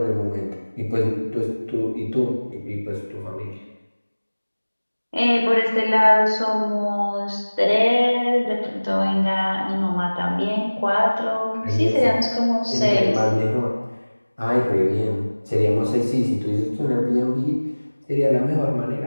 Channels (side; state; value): both; inverted; correlation -1.00